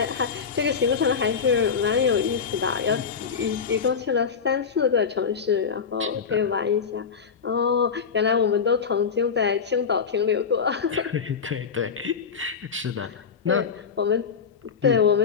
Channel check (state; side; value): quieter; right; 6.2 dB